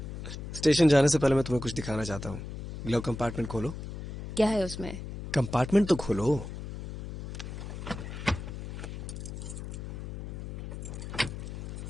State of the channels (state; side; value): noise; left; hum, 8 dB below the sound